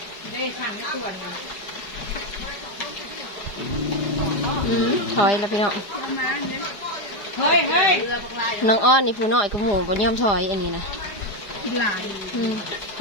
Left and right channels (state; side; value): late; right; 4.8 ms